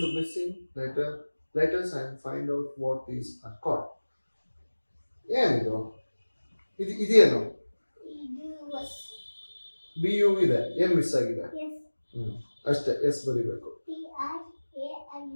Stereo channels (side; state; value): both; inverted; correlation -1.00